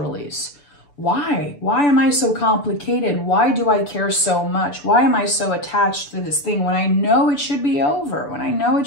Why? Why am I so complicated? Why do I care so much? Why am I so attached to this thing when I know it should be over, when I know it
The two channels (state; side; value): late; right; 6.9 ms